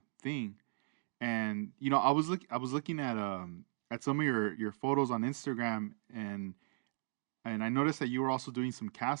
thing. And I was looking at some of your photos on Instagram, and I noticed that you were also doing some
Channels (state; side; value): silent; left; digital silence